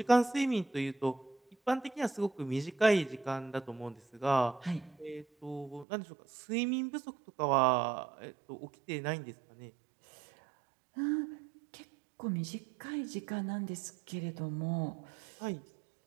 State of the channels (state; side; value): drops out; left; at 5.9 s